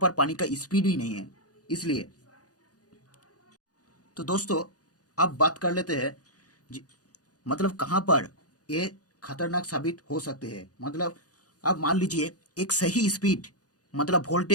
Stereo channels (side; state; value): right; late; 0.68 ms